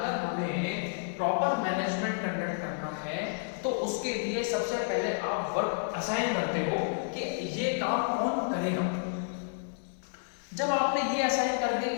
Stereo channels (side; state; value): right; silent; 57 dB below the other